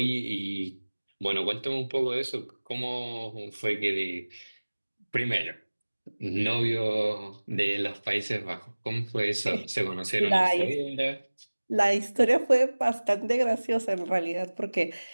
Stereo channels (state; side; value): inverted; both; correlation -1.00